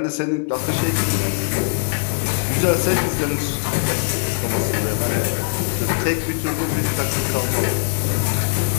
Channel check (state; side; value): silent; right; 65 dB below the other